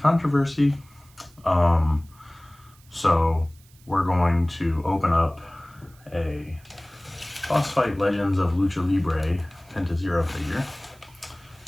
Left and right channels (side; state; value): right; noise; hiss, 28 dB below the sound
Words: So we're going to open up a Boss Fight Legends of Lucha Libre Penta Zero figure